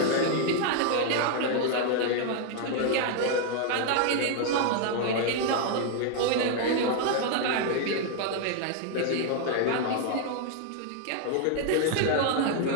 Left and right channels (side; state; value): both; different; correlation 0.00